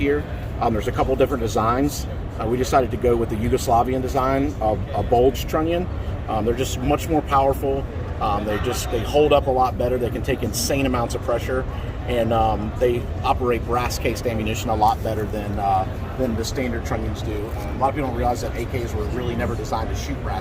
there's a couple different designs. We decided to go with the Yugoslavian design of a bulged trunnion. They're just much more powerful. They hold up a lot better. They can take insane amounts of pressure, and they operate brass cased ammunition a lot better than the standard trunnions do. A lot of people don't realize that AKs were really never designed to shoot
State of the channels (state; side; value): identical; both; correlation 1.00